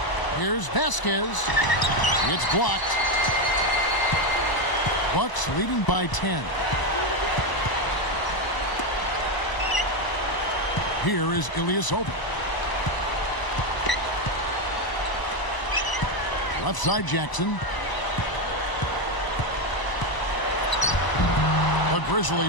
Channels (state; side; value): late; right; 1.0 ms